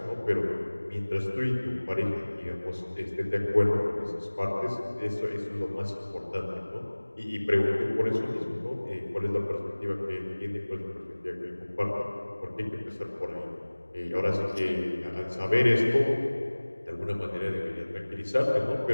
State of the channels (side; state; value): both; inverted; correlation -1.00